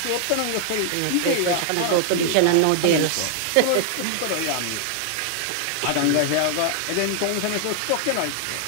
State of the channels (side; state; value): both; different; correlation 0.00